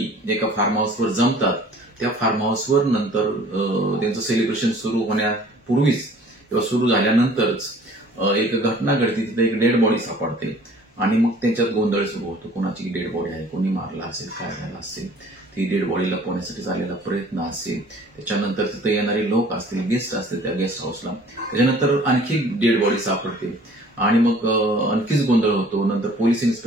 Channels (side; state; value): both; normal; correlation 0.51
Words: एका फार्म हाऊसवर जमतात। त्या फार्म हाऊसवर नंतर त्यांचं सेलिब्रेशन सुरू होण्यापूर्वीच किंवा सुरू झाल्यानंतरच एक घटना घडते, तिथे एक डेड बॉडी सापडते आणि मग त्यांच्यात गोंधळ सुरू होतो, कोणाची डेड बॉडी आहे, कोणी मारला असेल, काय झालं असेल, ती डेड बॉडी लपवण्यासाठी झालेला प्रयत्न असेल, त्याच्यानंतर तिथे येणारे लोक असतील, गेस्ट असतील त्या गेस्ट हाऊसला, त्याच्यानंतर आणखी डेड बॉडी सापडते आणि मग आणखीच गोंधळ होतो। नंतर पोलीस